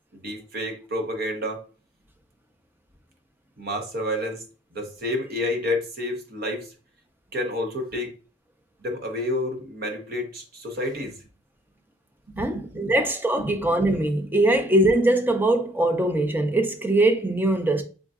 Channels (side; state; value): both; normal; correlation 0.60